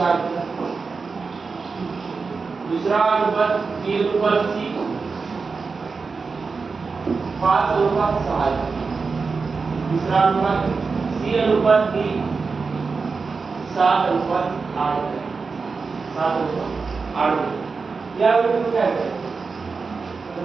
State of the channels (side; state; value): left; quieter; 4.6 dB